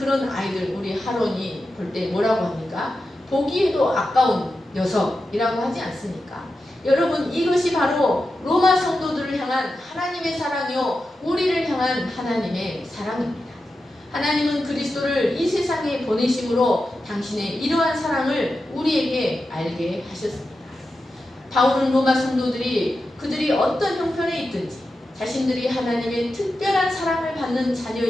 아이들 우리 하론이 볼 때 뭐라고 합니까? 보기에도 아까운 녀석이라고 하지 않습니까? 여러분, 이것이 바로 로마 성도들을 향한 하나님의 사랑이요, 우리를 향한 하나님의 사랑입니다. 하나님은 그리스도를 이 세상에 보내심으로 당신의 이러한 사랑을 우리에게 알게 하셨습니다. 바울은 로마 성도들이 그들이 어떤 형편에 있든지 자신들이 하나님의 특별한 사랑을 받는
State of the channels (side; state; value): both; normal; correlation 0.90